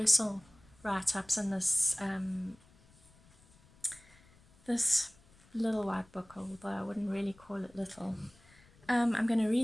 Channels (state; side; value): noise; left; rumble, 28 dB below the sound